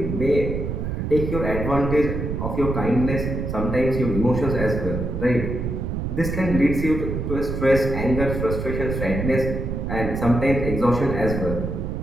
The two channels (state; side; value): noise; right; rumble, 3 dB below the sound